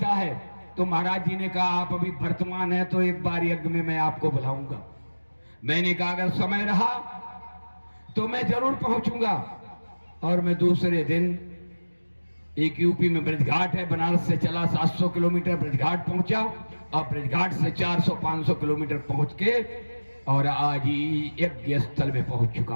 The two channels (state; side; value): inverted; both; correlation -1.00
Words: है। तो महाराज जी ने कहा आप अभी वर्तमान है तो एक बार यज्ञ में मैं आपको बुलाऊंगा। मैंने कहा अगर समय रहा तो मैं जरूर पहुंचूंगा। और मैं दूसरे दिन, एक यूपी में ब्रजघाट है, बनारस से चला 700 किलोमीटर, ब्रजघाट पहुंचा और ब्रजघाट से 400-500 किलोमीटर पहुंच के और आज ही यज्ञ स्थल में पहुंच चुका